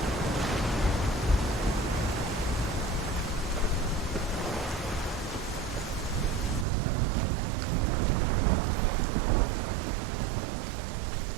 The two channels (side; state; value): left; drops out; at 6.7 s